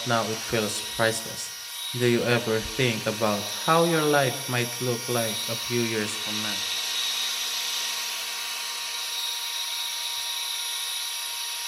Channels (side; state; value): both; identical; correlation 1.00